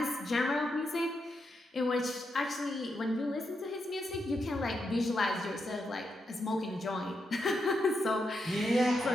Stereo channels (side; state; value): both; normal; correlation 0.83